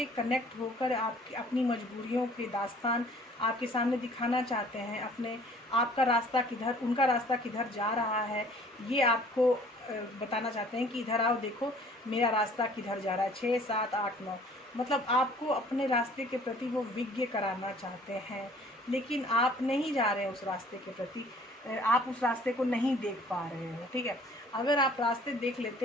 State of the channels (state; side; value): normal; both; correlation 0.54